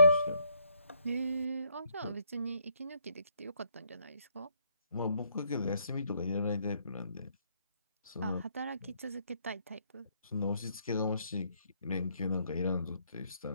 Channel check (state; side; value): inverted; both; correlation -0.71